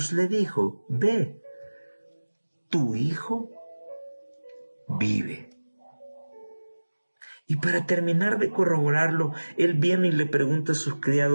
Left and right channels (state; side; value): inverted; both; correlation -1.00